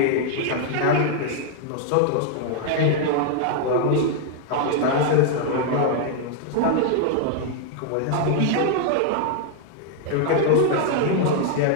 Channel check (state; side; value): different; both; correlation 0.00